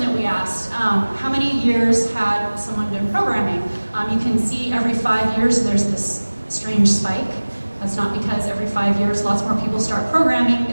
we asked. How many years had someone been programming? You can see every 5 years there's this strange spike. That's not because every 5 years lots more people start programming,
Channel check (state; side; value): inverted; both; correlation -1.00